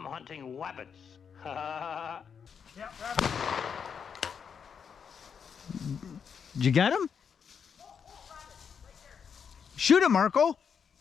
hunting rabbits. Yeah, rabbit. Did you get him? Shoot him, Marco.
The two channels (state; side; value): quieter; right; 6.9 dB